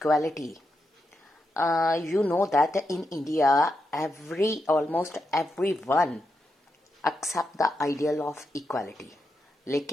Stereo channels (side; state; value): both; normal; correlation 0.85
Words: You know that in India, almost everyone accept the ideal of equality.